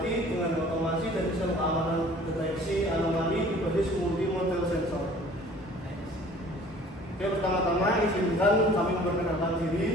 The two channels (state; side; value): normal; both; correlation 0.50